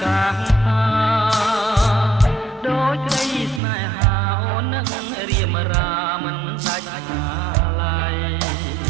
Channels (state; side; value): drops out; left; at 3.6 s